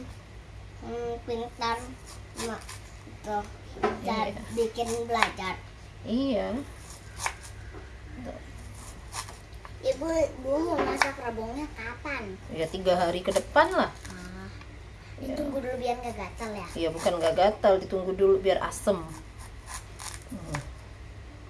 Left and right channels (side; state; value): both; identical; correlation 1.00